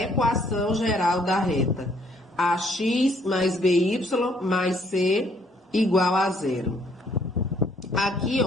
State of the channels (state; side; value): normal; both; correlation 0.65